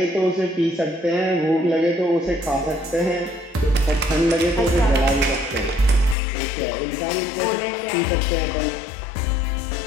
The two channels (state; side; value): drops out; right; at 6.2 s